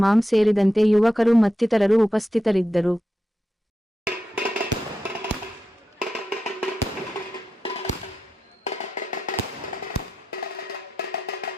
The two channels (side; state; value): both; normal; correlation 0.88